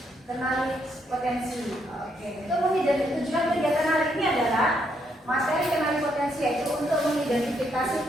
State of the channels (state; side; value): normal; both; correlation 0.75